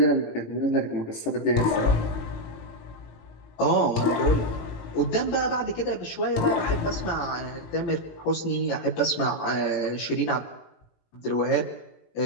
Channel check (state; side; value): late; right; 18 ms